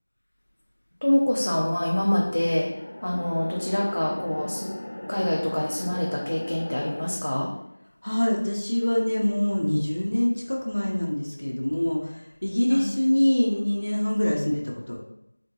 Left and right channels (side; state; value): both; inverted; correlation -1.00